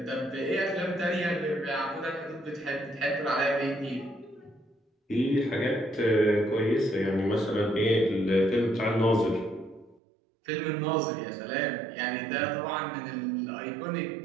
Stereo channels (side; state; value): left; drops out; at 10.0 s